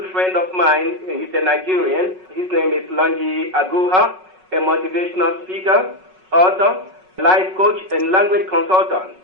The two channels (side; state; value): left; late; 5.4 ms